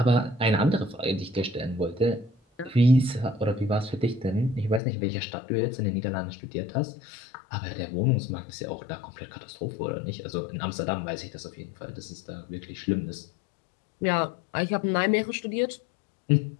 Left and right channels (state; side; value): drops out; right; at 4.8 s